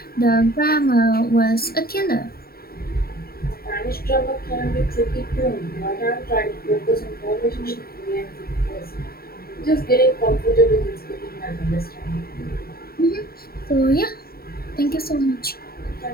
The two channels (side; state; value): right; late; 0.44 ms